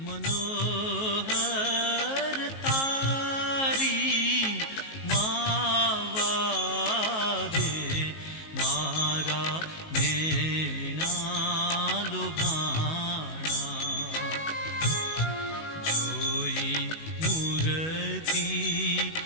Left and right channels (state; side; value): late; right; 19 ms